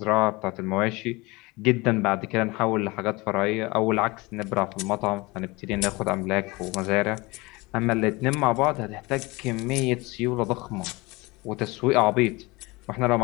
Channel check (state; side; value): quieter; right; 23.7 dB